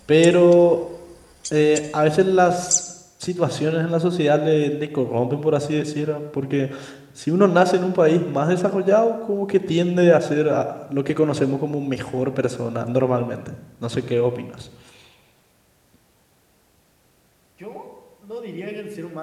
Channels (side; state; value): both; identical; correlation 1.00